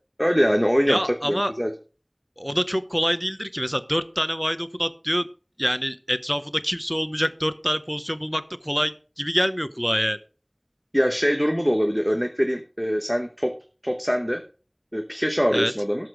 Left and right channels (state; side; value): identical; both; correlation 1.00